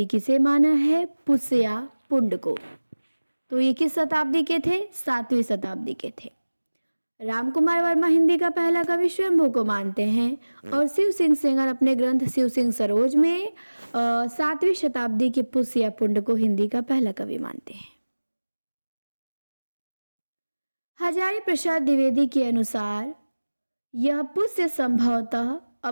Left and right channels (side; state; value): both; inverted; correlation -1.00